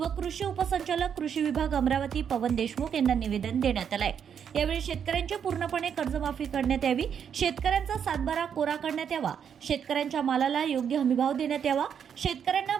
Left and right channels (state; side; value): quieter; left; 7.9 dB